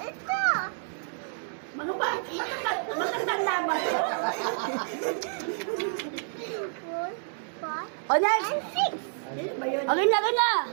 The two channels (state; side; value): silent; left; 59 dB below the other